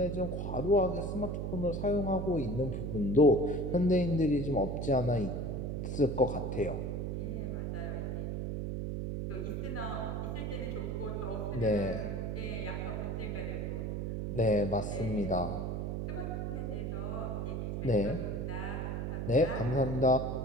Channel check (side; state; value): right; noise; hum, 2 dB below the sound